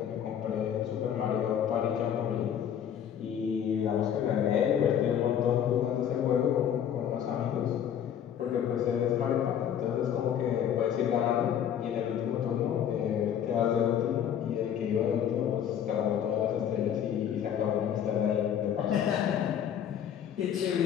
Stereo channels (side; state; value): right; quieter; 9.3 dB